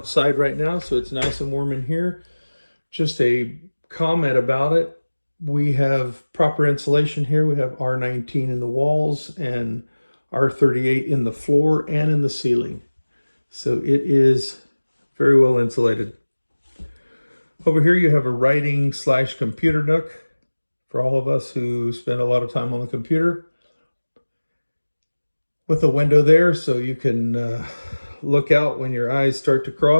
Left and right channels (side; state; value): both; inverted; correlation -1.00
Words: right now, so it's nice and warm in here. Just a comment about it. We have proper insulation here. We have R19 in the walls and R38 in the floor and in the ceiling. So it is very well insulated. Over here you have a writing / computer nook for all of us who spend a lot of time on the computer. With a window there so you can look out when your eyes start to